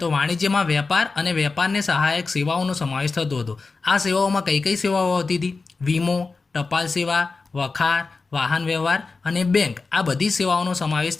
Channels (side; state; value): right; quieter; 4.1 dB